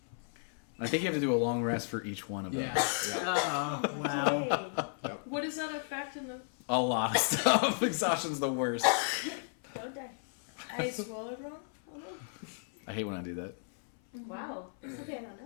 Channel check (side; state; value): right; silent; 55 dB below the other